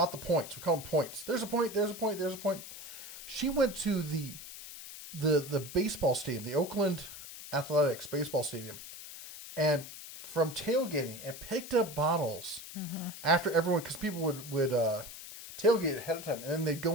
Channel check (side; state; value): left; noise; hiss, 12 dB below the sound